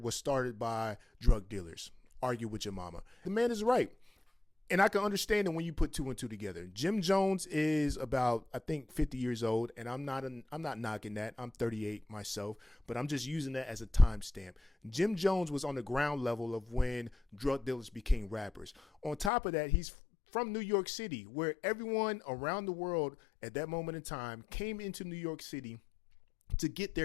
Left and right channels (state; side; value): drops out; right; at 19.3 s